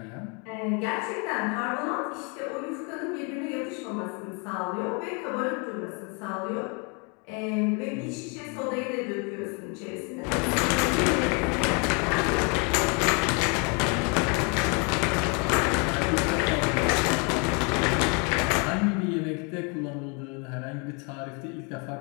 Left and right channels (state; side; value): quieter; right; 33.7 dB